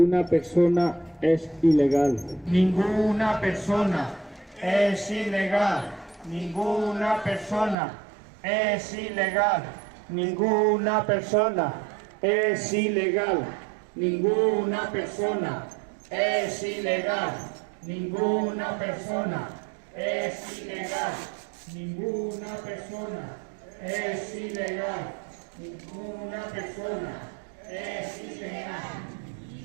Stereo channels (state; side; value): drops out; left; at 7.8 s